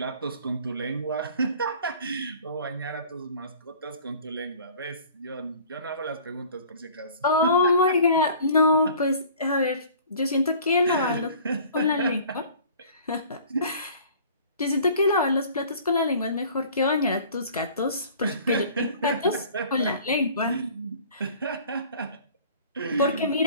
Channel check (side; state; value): both; inverted; correlation -0.48